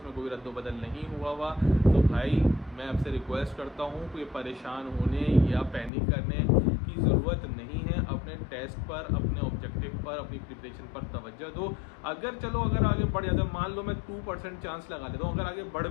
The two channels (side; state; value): right; drops out; at 5.9 s